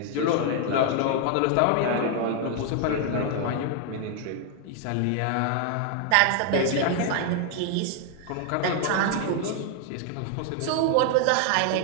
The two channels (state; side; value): different; both; correlation 0.00